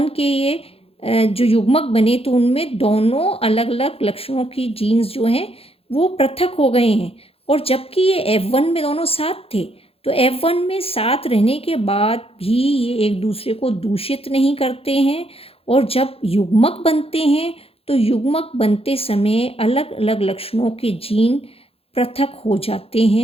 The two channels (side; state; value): right; late; 0.28 ms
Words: के ये जो युग्मक बने तो उनमें दोनों अलग अलग लक्षणों की जीन्स जो हैं वो पृथक हो गए हैं। और जबकि ये F1 में दोनों साथ थे, तो F1 में साथ रहने के बाद भी ये एक दूसरे को दूषित नहीं करते हैं, और जब युग्मक बनते हैं तो युग्मक बनते समय अलग अलग लक्षणों के जीन पृथक हो जाते